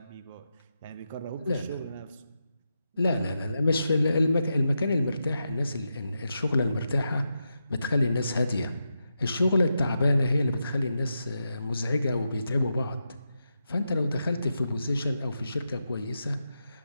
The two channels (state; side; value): inverted; both; correlation -0.87